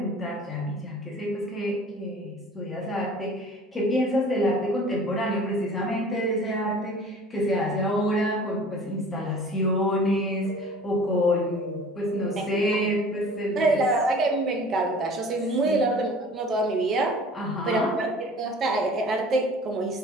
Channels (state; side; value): normal; both; correlation 0.46